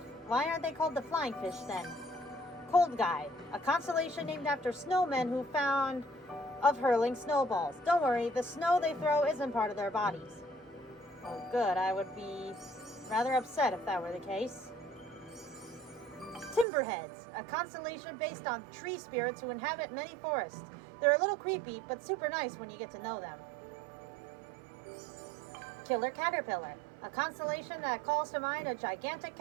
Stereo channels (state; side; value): drops out; left; at 16.7 s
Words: they called the flying fish then? Cold Guy, a constellation named after snowmen who found of hurling snowballs. Don't worry, the snow they throw isn't part of their bodies. Oh good, I would be rather upset if that were the case. Timberheads, a constellation based on tree spirits who inhabit many forests. They're a little creepy, but super nice when you get to know them. Killer Caterpillar, a constellation that calls to mind a gigantic